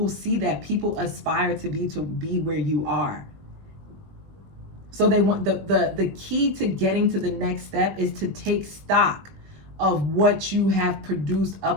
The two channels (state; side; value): late; left; 21 ms